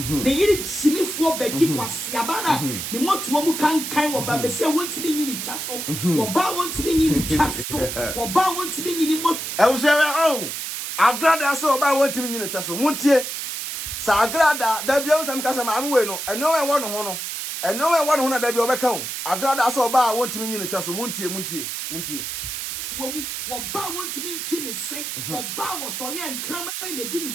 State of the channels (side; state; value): right; noise; hiss, 5 dB below the sound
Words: ne yiri chimifo bagi kwasiaba na ne motuo mu kankan wo ba bese wonti ne nyini twaso wo ba wonti ne nyini twaso wo ba wonti ne nyini mo oh Agradaa so ba wonti ne nyini twaso muntie sa Agradaa da bia usam kasa ma anwe no eno we wo no ho no eno we wo no ho na da bia obeka ho Agradaa so ba wonti ne nyini twaso muntie wo ba wonti ne nchi ne se wo ba wo so ye nkrama ne di ne